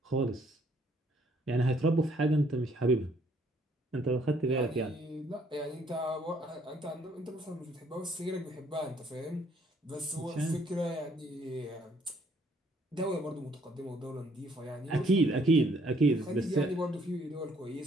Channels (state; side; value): normal; both; correlation 0.65